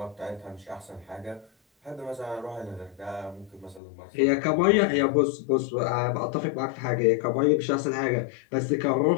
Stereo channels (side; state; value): right; drops out; at 3.8 s